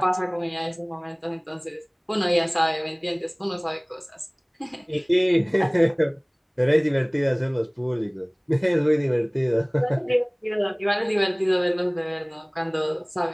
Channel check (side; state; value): both; identical; correlation 1.00